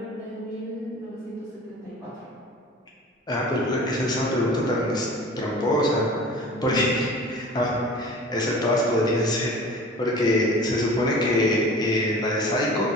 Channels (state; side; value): normal; both; correlation 0.42